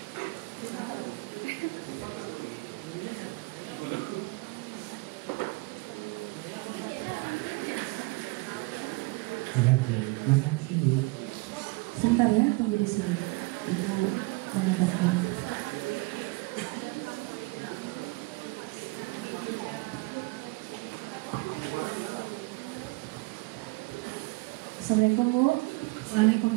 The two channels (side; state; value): left; quieter; 25.2 dB